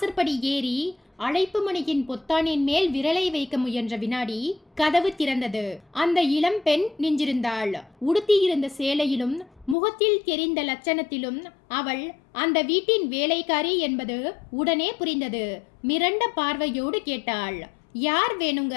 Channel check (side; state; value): right; drops out; at 9.8 s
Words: ஏறி அழைப்பு மணியின் பொத்தானின் மேல் விரலை வைக்க முயன்ற வினாடி கதவு திறந்தது. அந்த இளம் பெண் நின்றிருந்தாள். உடுத்தியிருந்த சேலையிலும் முகத்தில் தெரிந்த லட்சணத்திலும் அவள் அந்த வீட்டின் வேலைக்காரி என்பது உடனே புரிந்தது. மிரண்ட பார்வையோடு கேட்டாள், யார்